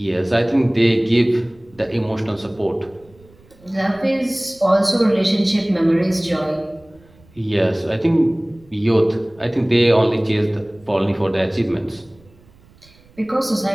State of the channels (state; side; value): noise; right; rumble, 28 dB below the sound